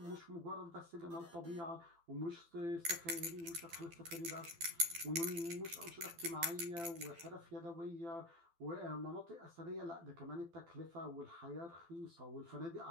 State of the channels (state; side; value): late; left; 12 ms